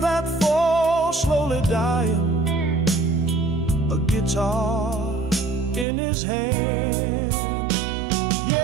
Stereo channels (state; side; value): drops out; left; at 5.9 s